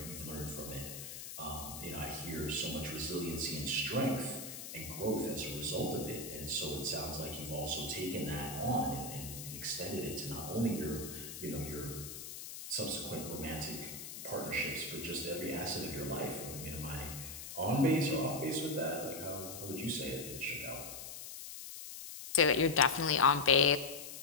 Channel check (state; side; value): noise; left; hiss, 9 dB below the sound